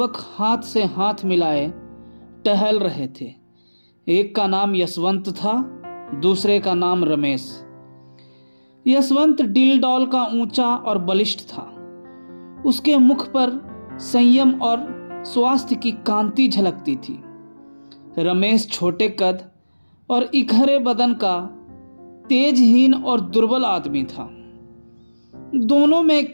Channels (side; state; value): both; inverted; correlation -1.00